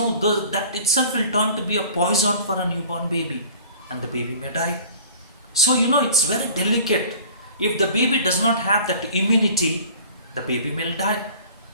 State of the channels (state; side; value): inverted; both; correlation -0.47